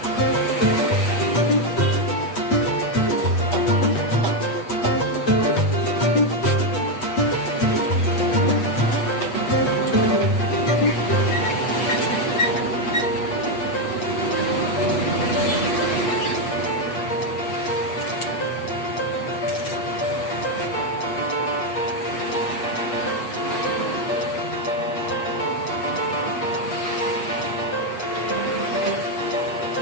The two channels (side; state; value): right; late; 8.2 ms